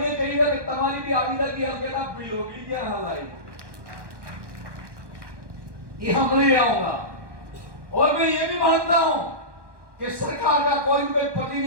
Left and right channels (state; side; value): late; left; 1.1 ms